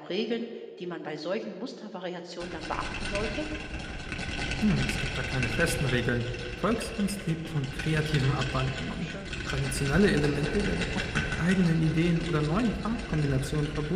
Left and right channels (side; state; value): both; identical; correlation 1.00